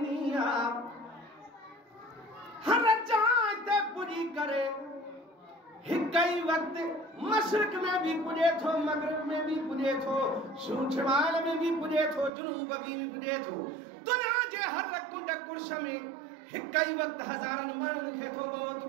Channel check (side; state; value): left; drops out; at 12.3 s